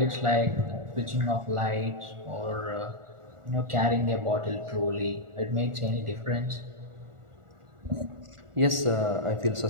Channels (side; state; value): left; late; 1.4 ms